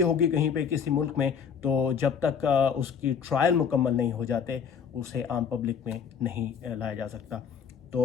होगी कहीं पे किसी मुल्क में, तो जब तक उसकी ट्रायल मुकम्मल नहीं हो जाते उसे आम पब्लिक में नहीं लाया जा सकता।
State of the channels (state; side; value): quieter; right; 6.9 dB